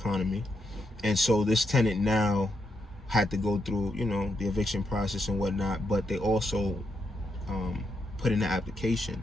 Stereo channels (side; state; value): both; normal; correlation 0.81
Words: And so this tenant now had to go through, the eviction process and whatnot, but they also put in an application.